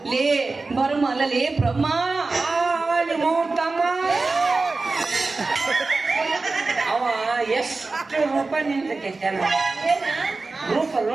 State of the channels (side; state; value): left; quieter; 3.7 dB